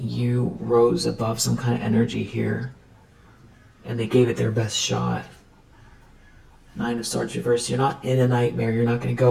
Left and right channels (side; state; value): both; identical; correlation 1.00